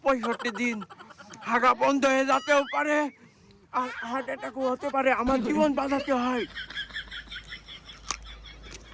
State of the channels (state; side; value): identical; both; correlation 1.00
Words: দিন হাগা বন্ধ হয়ে যেতেও পারে, আর হার্ট অ্যাটাকও হতে পারে। আমার জীবন বাঁচাতে হয়।